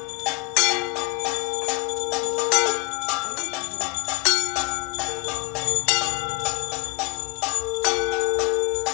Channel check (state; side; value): quieter; right; 25.1 dB